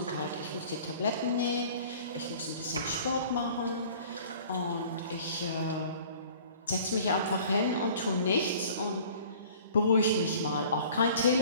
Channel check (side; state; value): both; inverted; correlation -0.49